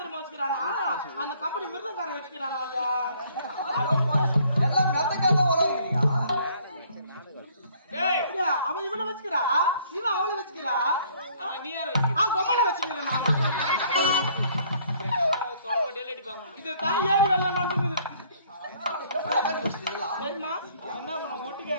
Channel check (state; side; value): inverted; both; correlation -0.61